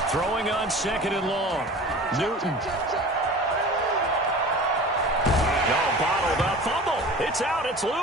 Throwing on 2nd and long. Newton. Bottled up, fumble. It's out, it's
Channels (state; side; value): normal; both; correlation 0.39